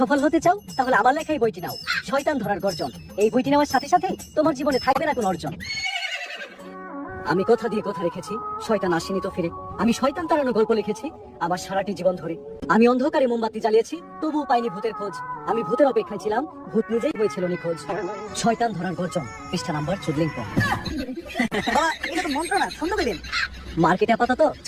হতে চাও তাহলে আমার লেখা এই বইটি নাও, শয়তান ধরার গর্জন। এই বইটি নেওয়ার সাথে সাথে তোমার জীবনে থাকবে না কোনো অর্জন। আমি কথা দিয়ে কথা রেখেছি, শয়তান আসেনি তো ফিরে। আমি শয়তান তাড়ানোর গল্প লিখেছি আমার সারাটি জীবন ধরে। আমি অন্ধকারে মোমবাতি জ্বালিয়েছি, তবুও পাইনি ভূতের খোঁজ। আমি ভূতের অপেক্ষায় ছিলাম, ভূত নিজেই হয়েছিল নিখোঁজ। শয়তান ধরার গর্জন, পৃষ্ঠা নাম্বার 14। বাবা এটা তো মন্ত্র না, ছন্দ কইবেন। মার্কেটে আপাতত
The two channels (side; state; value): both; identical; correlation 1.00